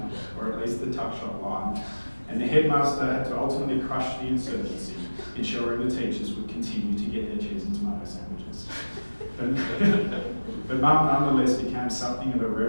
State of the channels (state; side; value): inverted; both; correlation -1.00